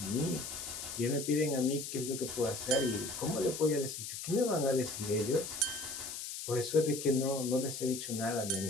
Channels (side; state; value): left; noise; hiss, 7 dB below the sound